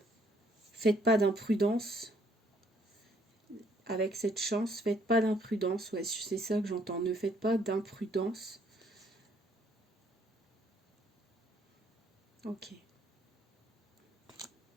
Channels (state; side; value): normal; both; correlation 0.66